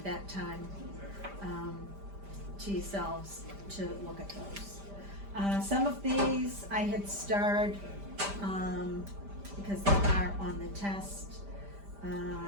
that time to yourselves to look at those. Some of these I had starred because they are on the test.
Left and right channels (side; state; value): left; late; 5.0 ms